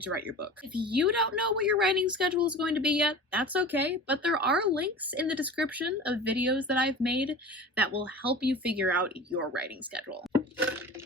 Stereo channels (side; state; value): both; normal; correlation 0.36